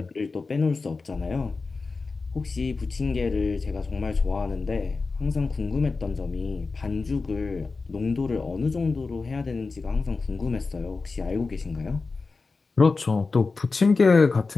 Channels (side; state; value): right; quieter; 4.1 dB